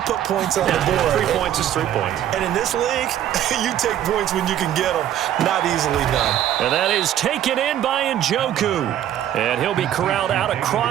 put points on the board. 3 points is 3 points. And in this league, you take points when you can get them. Not easily done. And that is taken in by Njoku. And he'll be corralled out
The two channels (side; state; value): left; quieter; 11.3 dB